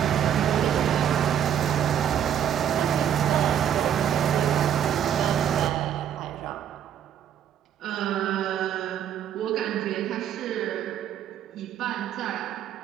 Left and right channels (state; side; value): quieter; left; 9.6 dB